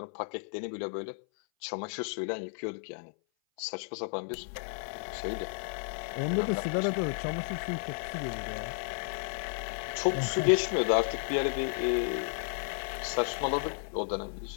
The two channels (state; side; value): silent; right; 56 dB below the other